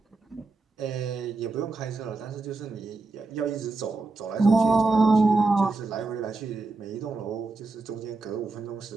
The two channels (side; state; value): left; quieter; 3.6 dB